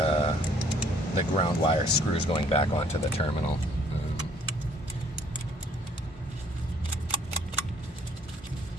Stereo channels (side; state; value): both; normal; correlation 0.62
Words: wire screws going back onto the terminal.